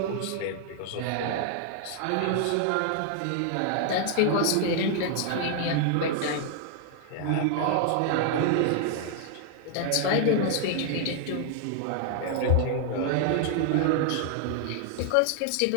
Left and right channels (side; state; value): both; different; correlation 0.00